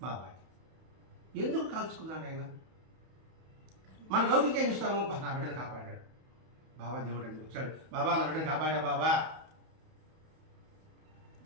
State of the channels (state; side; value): late; left; 31 ms